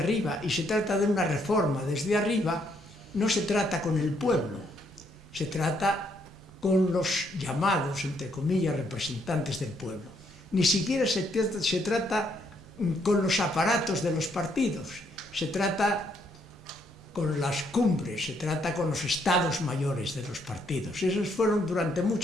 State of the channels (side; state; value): right; noise; rumble, 25 dB below the sound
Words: y se trata de una reforma desde arriba, no se trata con el pueblo, se trata con los llamados, entre comillas, representantes del pueblo. Ni siquiera se trata con los aparatos de los partidos, se trata con las cumbres, se trata con los estados mayores de los partidos. Esos fueron durante